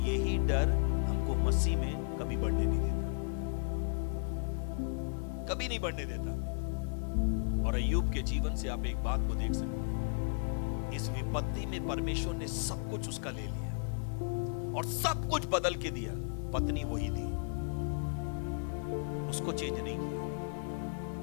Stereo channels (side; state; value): right; silent; digital silence